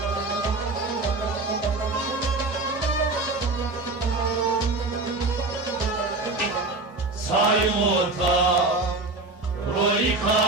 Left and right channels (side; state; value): left; quieter; 3.2 dB